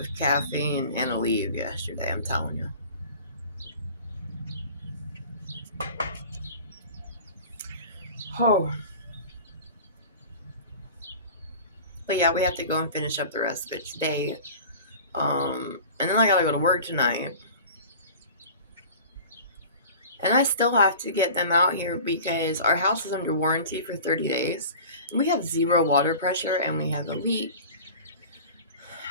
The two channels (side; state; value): both; inverted; correlation -0.39